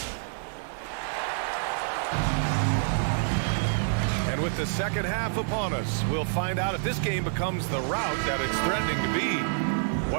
With the second half upon us, we'll find out if this game becomes the route that it's threatening to be.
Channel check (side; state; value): left; silent; digital silence